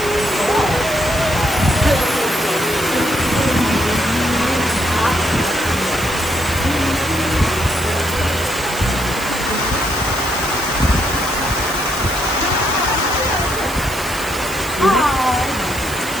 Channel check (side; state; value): right; noise; hiss, 11 dB below the sound